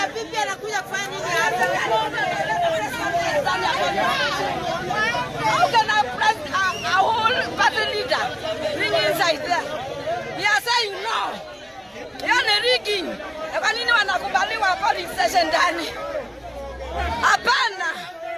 How can I press a whole party leader bring inside there? We are saying no. Yana rigging. Kwa nini wanakubaliwa police station ndani? Hapana.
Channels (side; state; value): both; identical; correlation 1.00